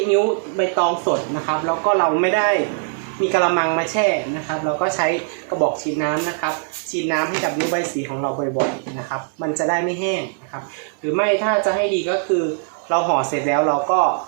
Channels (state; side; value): silent; left; 65 dB below the other